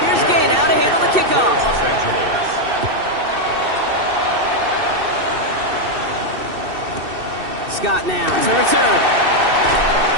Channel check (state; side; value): late; left; 2.6 ms